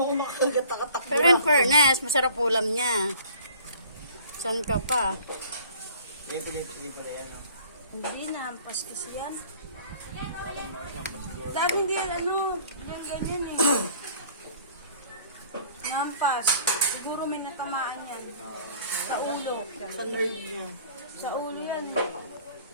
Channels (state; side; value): inverted; both; correlation -0.51